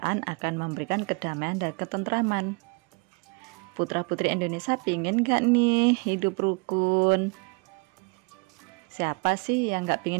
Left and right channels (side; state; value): left; quieter; 30.9 dB